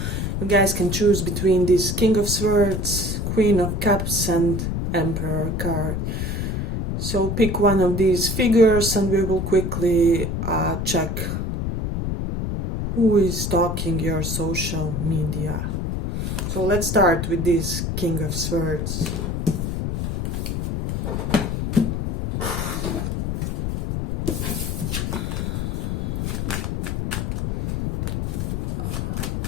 you guys can choose between this King of Swords, Queen of Cups and Emperor card. So pick one of these figures and we will quickly check who is stalking your social media. So let's start with this King of Swords.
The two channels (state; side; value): noise; left; rumble, 1 dB below the sound